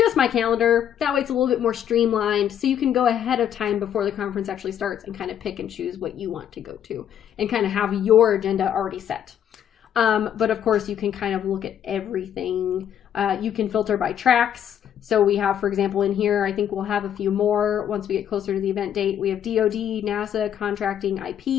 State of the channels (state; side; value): quieter; right; 9.8 dB